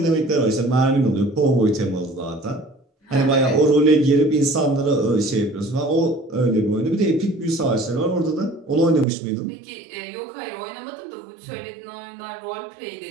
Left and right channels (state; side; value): drops out; left; at 9.1 s